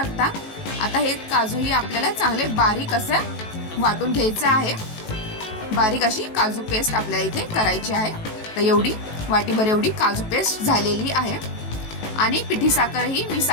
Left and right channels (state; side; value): late; right; 18 ms